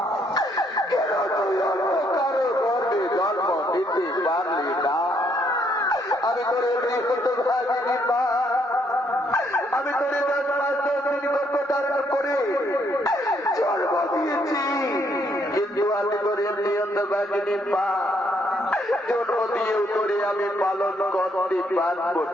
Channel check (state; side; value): normal; both; correlation 0.71